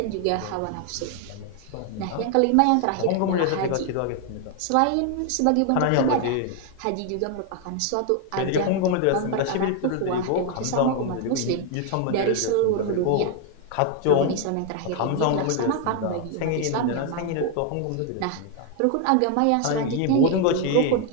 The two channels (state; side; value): different; both; correlation 0.01